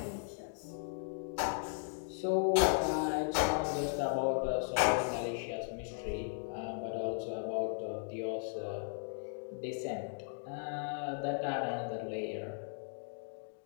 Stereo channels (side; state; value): right; silent; digital silence